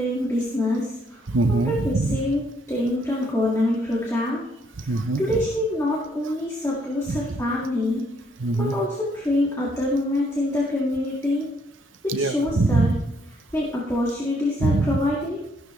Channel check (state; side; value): normal; both; correlation 0.70